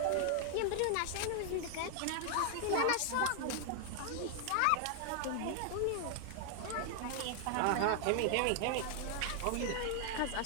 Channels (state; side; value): different; both; correlation 0.00